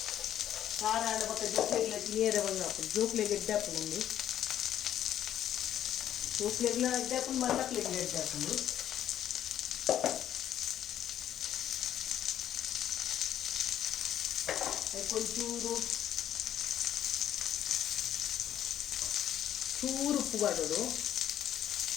ಖಾರ ಆಡ ಪಕ್ಕ ಜೋಕ್ಲೆಗ್ಲ ನೇರ ಬಂದು ಹಾಕೊಂಡು ಜೋಕ್ಲೆಗೆ ಎಡ್ಡೆ ಹಾಕೊಂಡು ಜೋಕ್ಲೆಗ್ಲ ಎಡ್ಡೆ ಹಾಕೊಂಡು ಮಲ್ಲಕ್ಲೆಗ್ಲ ಎಡ್ಡೆ ಹಾಕೊಂಡು ಅದಕ್ಕೊಂಚೂರು ಚೂರು ಉಪ್ಪು ಮಾಡೋದು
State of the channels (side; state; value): right; quieter; 11.0 dB